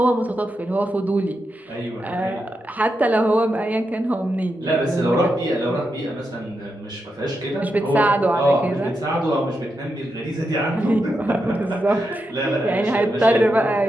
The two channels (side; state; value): both; normal; correlation 0.86